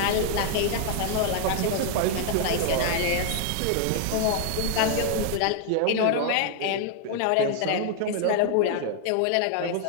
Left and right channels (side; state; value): both; different; correlation 0.00